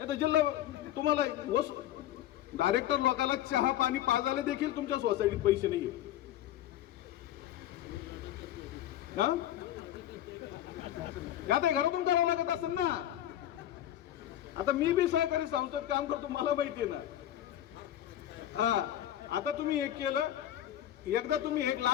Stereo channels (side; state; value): right; quieter; 12.5 dB